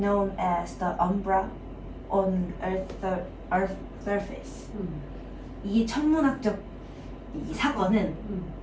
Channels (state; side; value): identical; both; correlation 1.00